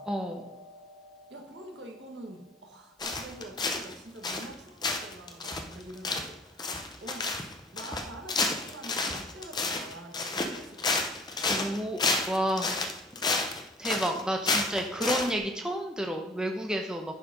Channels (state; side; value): normal; both; correlation 0.48